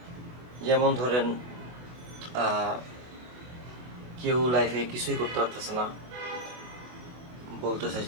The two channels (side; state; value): left; late; 24 ms